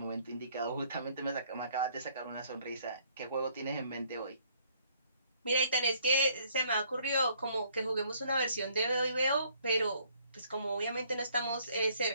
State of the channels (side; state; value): both; inverted; correlation -0.64